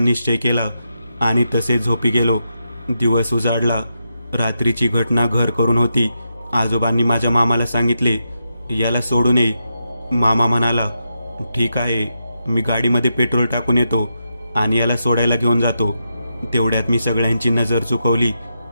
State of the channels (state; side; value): inverted; both; correlation -0.85